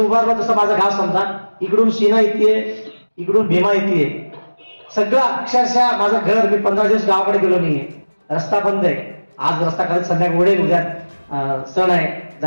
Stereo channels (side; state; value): both; inverted; correlation -1.00